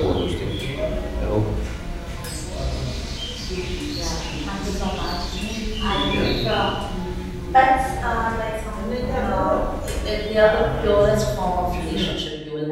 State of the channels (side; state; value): both; identical; correlation 1.00